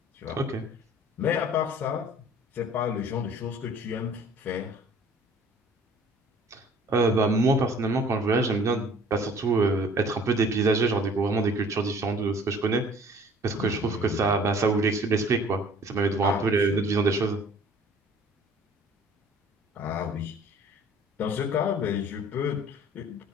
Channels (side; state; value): both; normal; correlation 0.51